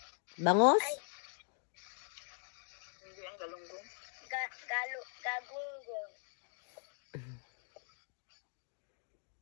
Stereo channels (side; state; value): right; silent; 51 dB below the other